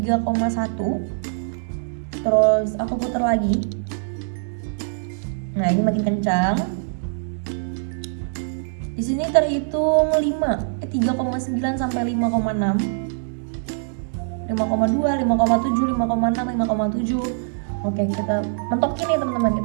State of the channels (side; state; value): left; silent; digital silence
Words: Terus aku putar lagi. Nah, ini makin kencang. Di sini terhitung 3,9 sampai 5,6. 5,2, 5,7, 5,6, 5,7. Oke, kita mentokin nih teman-teman,